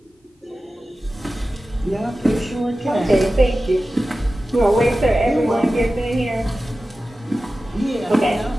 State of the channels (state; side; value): normal; both; correlation 0.95